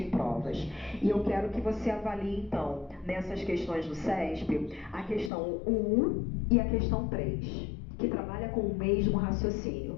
provas. E eu quero que você avalie, então, nessas questões do CESP, a questão 1 e a questão 3, que trabalha com o mesmo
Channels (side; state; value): right; drops out; at 5.3 s